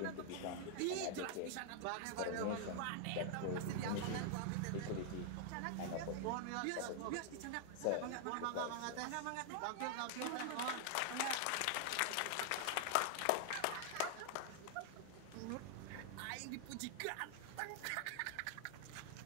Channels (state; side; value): different; both; correlation 0.00